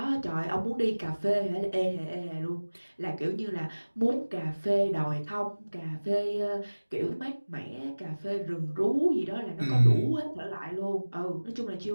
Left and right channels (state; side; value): inverted; both; correlation -1.00